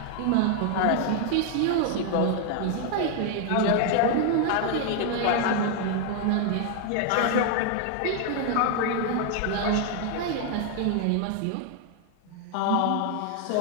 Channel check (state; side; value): different; both; correlation 0.00